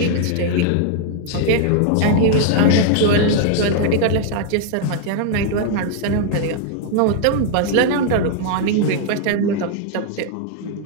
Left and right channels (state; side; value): different; both; correlation 0.00